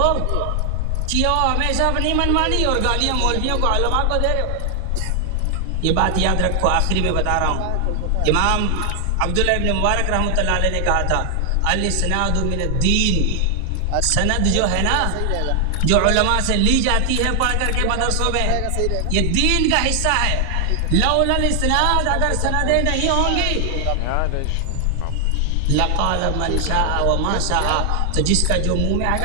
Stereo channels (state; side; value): different; both; correlation 0.00